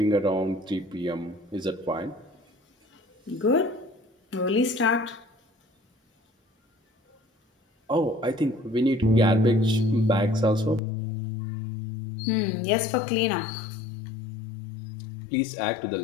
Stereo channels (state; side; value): drops out; right; at 10.8 s